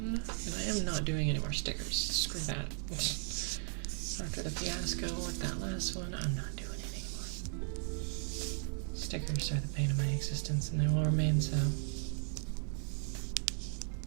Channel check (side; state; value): left; silent; 53 dB below the other